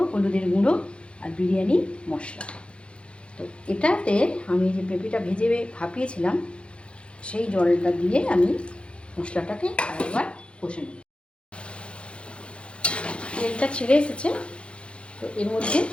হলুদের গুঁড়ো আর বিরিয়ানি মশলা। তো এটাতে আমি যে পেঁপেটা ভেজে ভাপিয়েছিলাম সেই জলটা দিয়ে আমি মশলাটাকে আরেকবার কষে নেব। তেলটা ছেড়ে এসেছে, তো এর মধ্যে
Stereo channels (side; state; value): right; late; 0.058 ms